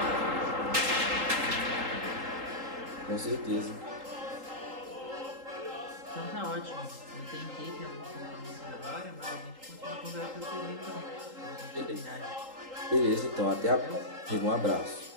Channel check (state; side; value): late; left; 3.8 ms